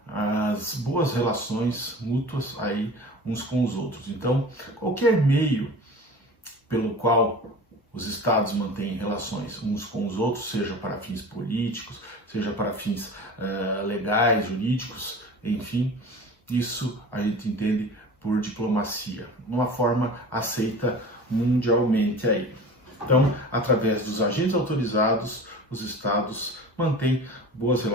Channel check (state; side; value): normal; both; correlation 0.37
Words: as boas relações mútuas aí uns com os outros. Então, qualquer meio pelo qual os estados mantêm relações uns com os outros, seja para fins políticos, seja para fins legais, jurídicos, enfim, isso a gente entende por diplomacia, uma forma aceita mundialmente aí. Então, através dos agentes autorizados, os estados mantêm boas